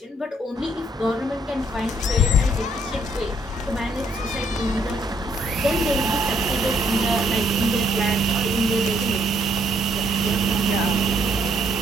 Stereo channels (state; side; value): normal; both; correlation 0.69